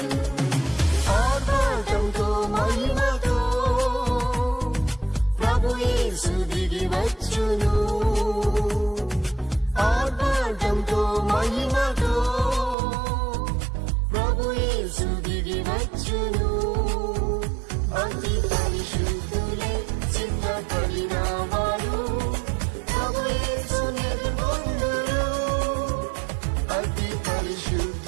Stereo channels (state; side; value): drops out; left; at 12.8 s